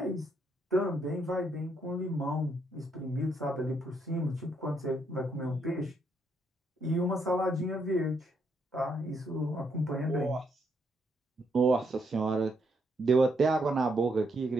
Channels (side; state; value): both; normal; correlation 0.75